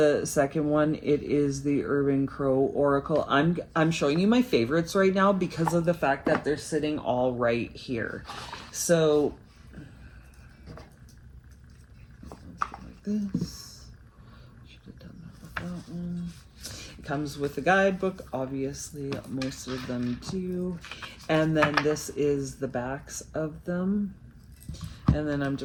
second one. It is the Urban Crow Oracle. I'm showing you my favorites right now because of the fact that they're sitting all right here. So like this. Should have done that with that one. It comes with a guidebook, obviously most of them do. And then this is the backs of them. And then I'm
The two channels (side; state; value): both; identical; correlation 1.00